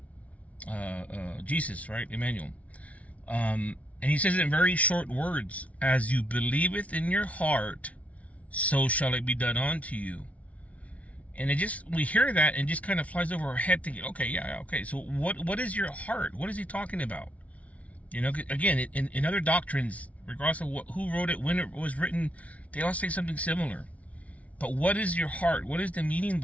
Jesus, right? Emmanuel. And he says it in very short words: as you believeth in your heart, so shall it be done unto you. And we hear that and just kind of flies over our head thinking, okay, so what is your heart? What is he talking about? Again, in other doctrines, regardless of who wrote it, when it was written, they all say something similar. But what is your heart? What is the meaning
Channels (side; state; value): right; late; 0.067 ms